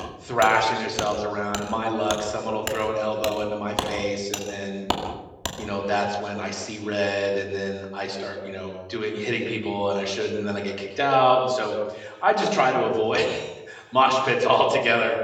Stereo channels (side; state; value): both; identical; correlation 1.00